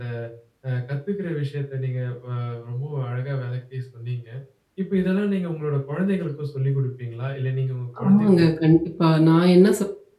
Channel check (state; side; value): identical; both; correlation 1.00